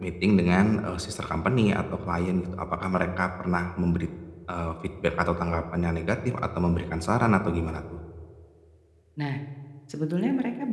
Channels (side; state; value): both; identical; correlation 1.00